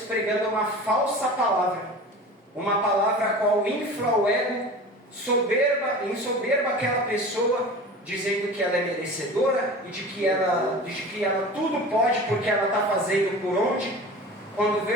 uma falsa palavra. Uma palavra a qual infla o ego, ensoberba aquela pessoa, dizendo que ela é merecedora e de que ela tudo pode porque ela está fazendo por onde, quando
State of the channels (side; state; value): both; normal; correlation 0.36